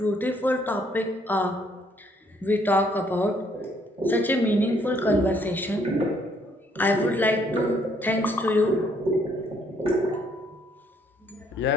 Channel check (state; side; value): normal; both; correlation 0.67